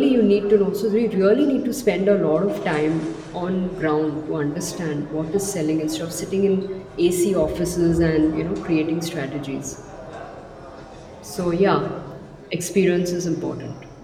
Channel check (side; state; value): both; identical; correlation 1.00